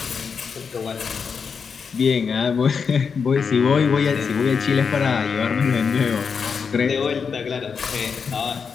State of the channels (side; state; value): right; quieter; 5.9 dB